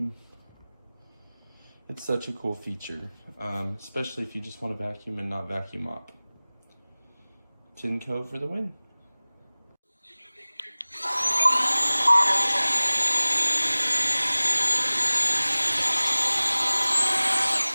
It's such a cool feature, especially if you just want to vacuum and not vacuum mop. Tineco for the win.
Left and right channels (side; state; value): both; inverted; correlation -0.99